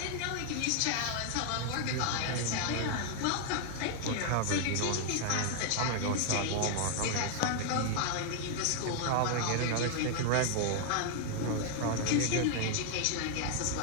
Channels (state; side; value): different; both; correlation 0.00